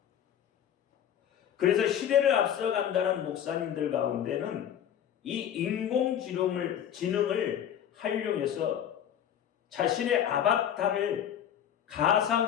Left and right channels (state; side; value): quieter; right; 9.6 dB